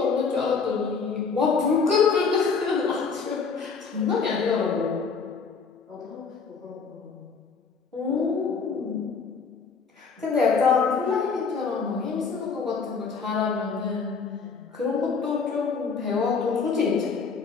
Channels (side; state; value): right; quieter; 5.3 dB